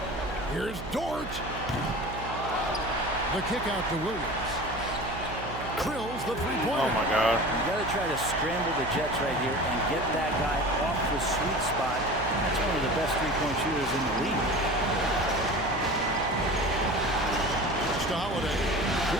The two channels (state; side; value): noise; right; hum, 9 dB below the sound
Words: Here's Dort. The kick out to Williams. Drills the three-pointer. Oh my God. You got to try to scramble the Jets right here and get that guy off the sweet spot. That's one of the best three-point shooters in the league. To Holiday.